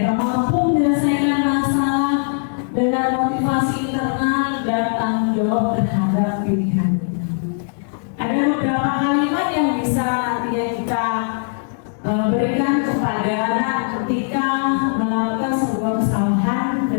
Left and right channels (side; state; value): right; silent; digital silence